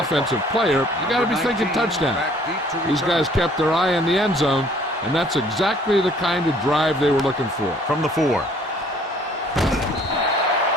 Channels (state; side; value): normal; both; correlation 0.58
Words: player, you got to be thinking touchdown. These guys kept their eye on the end zone, and that's exactly the kind of drive they were looking for. From the 4.